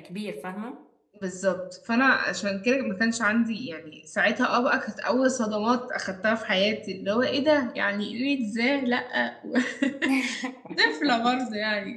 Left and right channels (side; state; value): both; identical; correlation 1.00